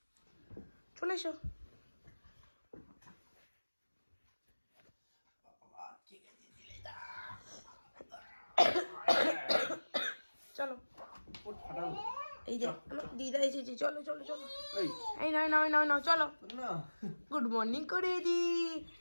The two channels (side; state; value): both; inverted; correlation -1.00